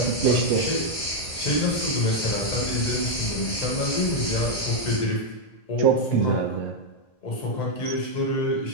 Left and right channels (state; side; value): late; right; 1.6 ms